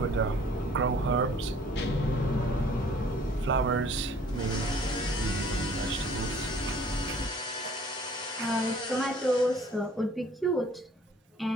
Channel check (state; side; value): normal; both; correlation 0.54